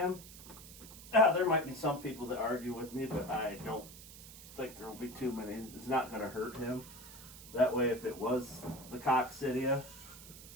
there might be some people that argue with me, but I don't think there will be too many. It's not going to hurt him. That way, if it was the coccidia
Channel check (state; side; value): noise; right; hiss, 16 dB below the sound